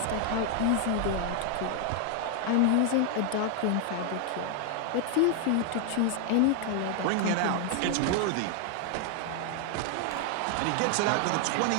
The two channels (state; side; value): different; both; correlation 0.00